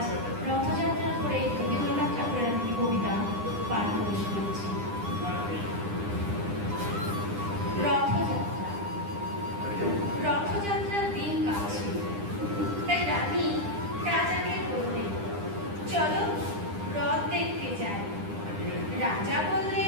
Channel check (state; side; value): late; left; 9.9 ms